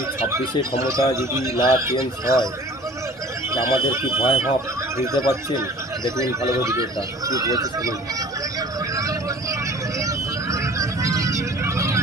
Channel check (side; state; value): both; normal; correlation 0.46